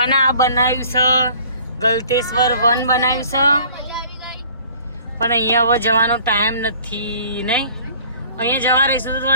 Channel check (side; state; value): both; inverted; correlation -0.51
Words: અને આ બનાવ્યું છે ગલતેશ્વર વન બનાવ્યું છે, પણ અહીંયા હવે જવાનો ટાઈમ નથી નહીં. અહીંયા જવા રહીશું તો